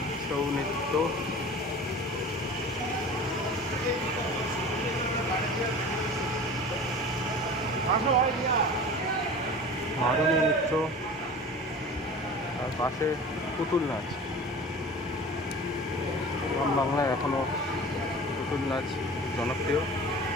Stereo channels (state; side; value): normal; both; correlation 0.38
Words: ছৌ নৃত্য, মারুনি নৃত্য, আর পাশে পুতুল নাচ। গ্রাম বাংলায় এখনও পুতুল নাচ জনপ্রিয়,